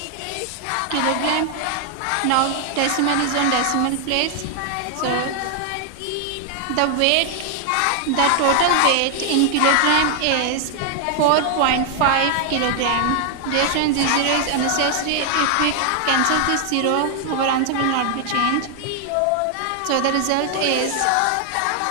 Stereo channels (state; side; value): different; both; correlation 0.00